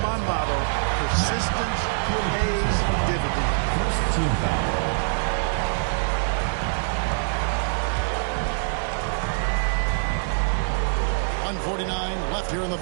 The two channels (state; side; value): silent; left; digital silence